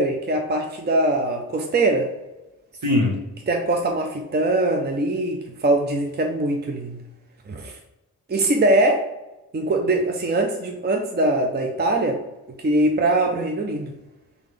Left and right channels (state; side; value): normal; both; correlation 0.13